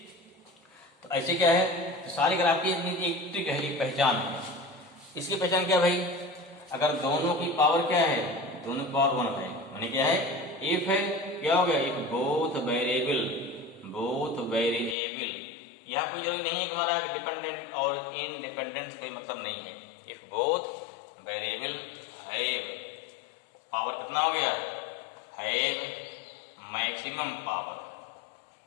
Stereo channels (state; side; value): drops out; right; at 15.0 s